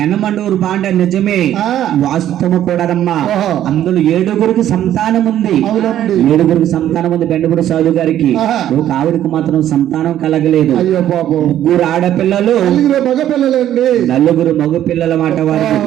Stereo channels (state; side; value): quieter; left; 11.7 dB